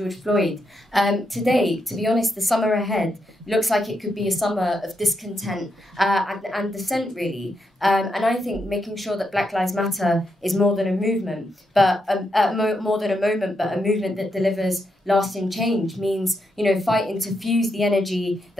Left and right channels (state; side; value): normal; both; correlation 0.82